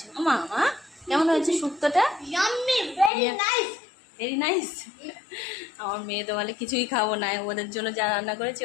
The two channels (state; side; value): drops out; right; at 3.1 s